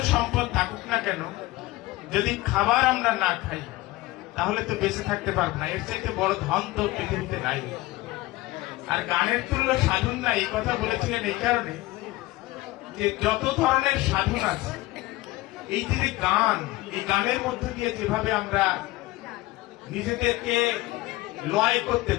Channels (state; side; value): quieter; right; 19.2 dB